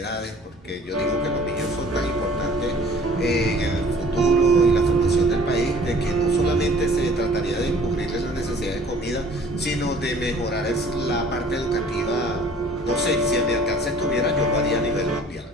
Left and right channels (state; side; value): normal; both; correlation 0.51